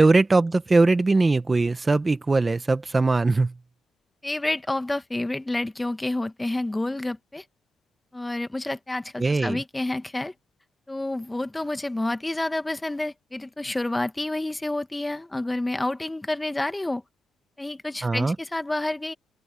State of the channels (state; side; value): normal; both; correlation 0.97